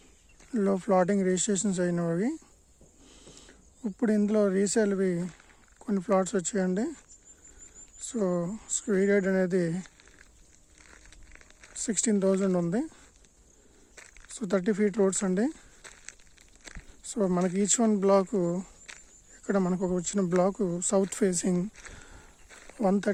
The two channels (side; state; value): both; identical; correlation 1.00